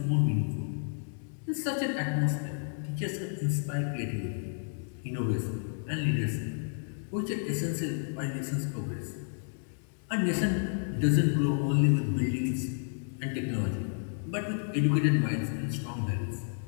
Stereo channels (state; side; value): silent; right; digital silence